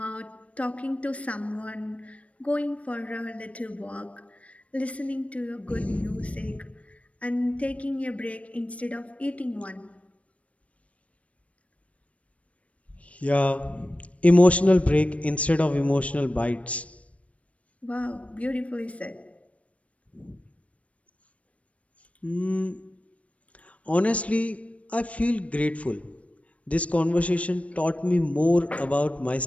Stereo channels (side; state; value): right; late; 0.065 ms